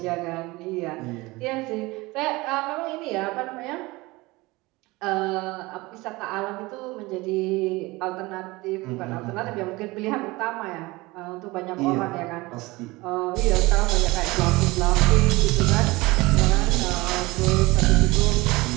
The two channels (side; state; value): left; quieter; 22.0 dB